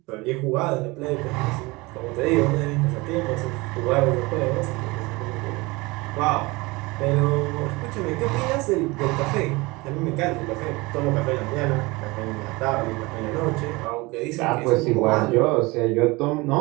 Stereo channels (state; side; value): quieter; left; 23.6 dB